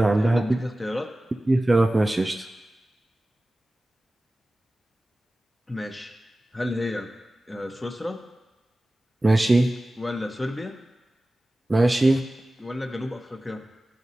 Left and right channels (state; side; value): normal; both; correlation 0.96